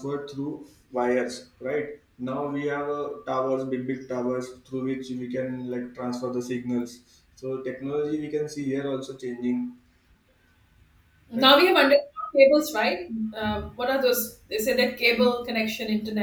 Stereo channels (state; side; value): identical; both; correlation 1.00